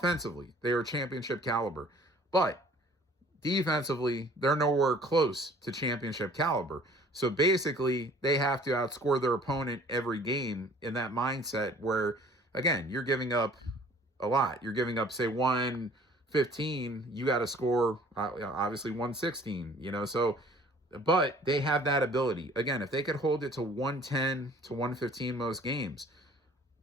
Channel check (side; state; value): both; normal; correlation 0.53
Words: they are championship caliber. But defensively, they're nowhere close to championship caliber. So basically, they have to outscore their opponent every game in that mindset where, again, you're giving up a lot. You're giving up, say, 115. You got to score, obviously, 116, so, but they have that ability. Again, if they could hold it to 110 to 115 most games,